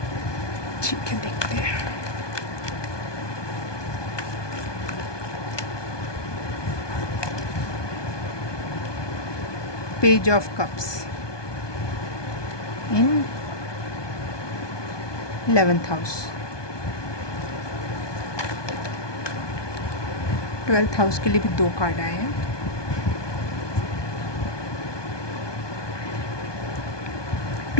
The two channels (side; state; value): right; late; 1.2 ms